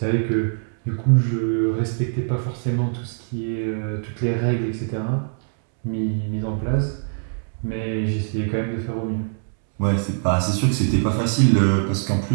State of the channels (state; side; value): silent; left; 64 dB below the other